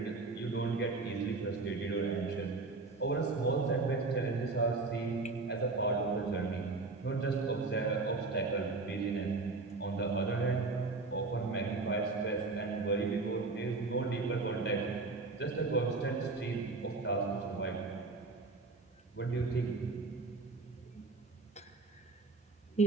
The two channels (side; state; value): left; quieter; 3.7 dB